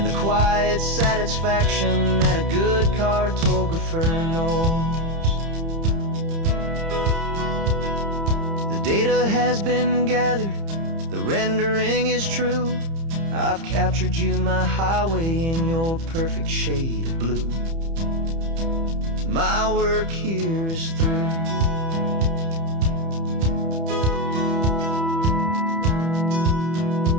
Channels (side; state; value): left; late; 30 ms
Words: the quiet satisfaction that a good cartographer knows. The data has been gathered, the rendering is true. I've captured you, my highway, in your perfect shade of blue. My work here is through.